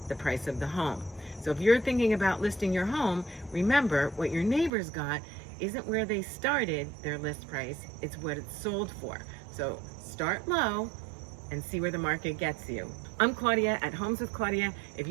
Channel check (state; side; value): drops out; left; at 4.7 s